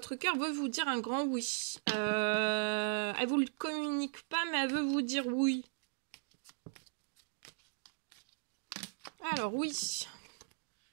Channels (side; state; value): left; silent; digital silence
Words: cœur veut vous dire un grand oui. Elle vous le communique pas, mais elle veut vous dire oui. Alors, oui.